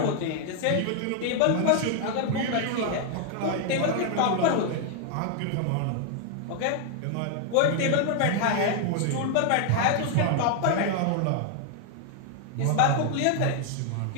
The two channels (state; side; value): different; both; correlation 0.00